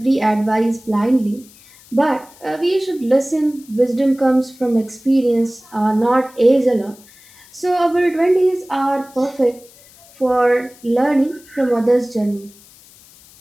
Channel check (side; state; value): left; noise; hiss, 25 dB below the sound